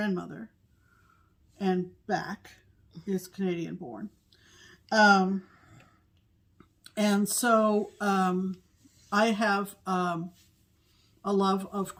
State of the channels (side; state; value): both; identical; correlation 1.00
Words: and back, is Canadian born. And so I have a love of